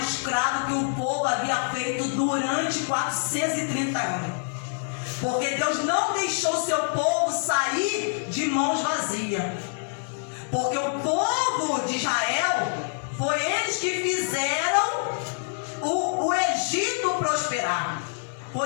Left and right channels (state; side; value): silent; right; 61 dB below the other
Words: que o povo havia feito durante 430 anos. Porque Deus não deixou seu povo sair de mãos vazias. Porque o povo de Israel, foi eles que fizeram o Egito prosperar.